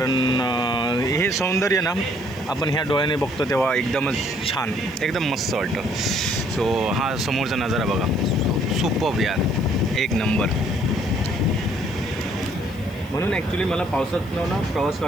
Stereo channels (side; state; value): right; noise; hiss, 25 dB below the sound